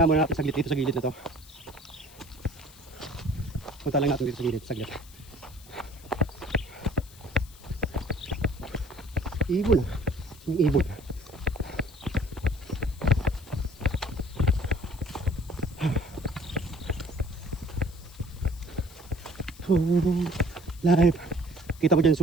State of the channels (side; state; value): left; noise; hiss, 22 dB below the sound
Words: muna natin saglit dito sa gilid na to. Punta lang natin dito sa gilid, saglit. Ibon. Yung ibon. Live. Kita mo dyan